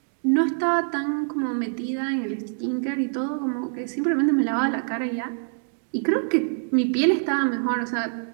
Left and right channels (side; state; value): left; silent; digital silence